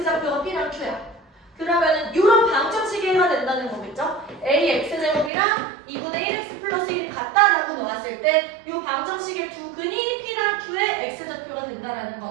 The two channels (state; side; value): drops out; left; at 5.3 s